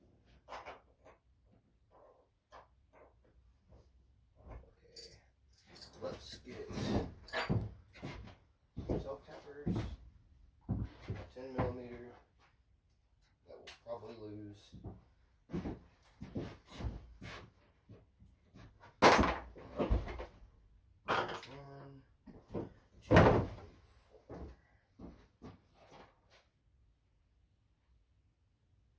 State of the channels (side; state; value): both; identical; correlation 1.00